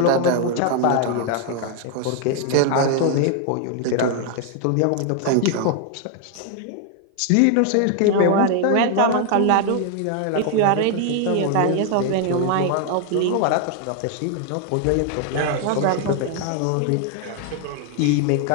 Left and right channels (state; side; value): different; both; correlation 0.00